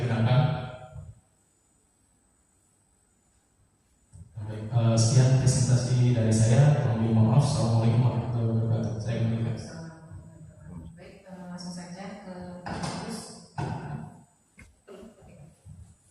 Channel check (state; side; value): identical; both; correlation 1.00